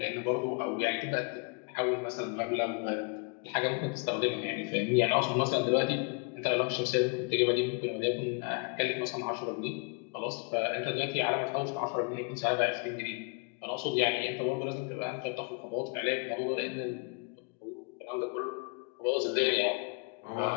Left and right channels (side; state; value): right; quieter; 35.6 dB